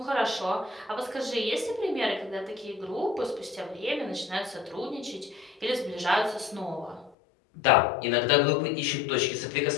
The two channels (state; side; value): drops out; right; at 7.1 s